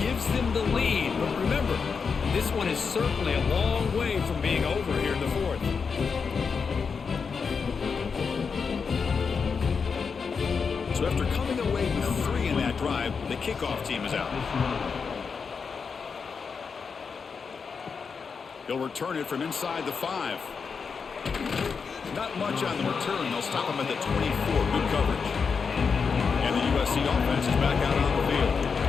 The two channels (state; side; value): quieter; right; 5.6 dB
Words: them the lead. But remember, this one is certainly a long way from being over here in the 4th. So after coming away with 3 in that drive, the kickoff team is out. He'll return it from inside the 5. Not much on the return. They'll stop him at the 24. Good coverage. And the USC offense is back out on the field.